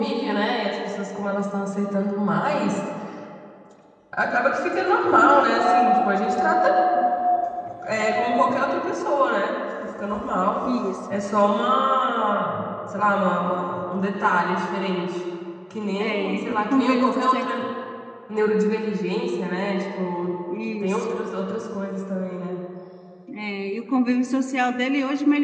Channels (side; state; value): both; identical; correlation 1.00